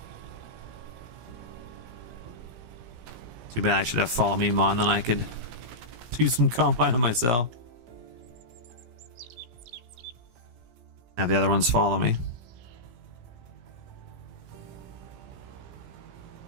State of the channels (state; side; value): late; left; 17 ms